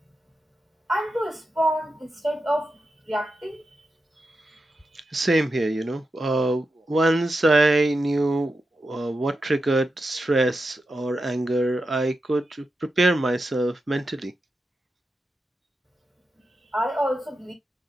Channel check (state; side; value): normal; both; correlation 0.89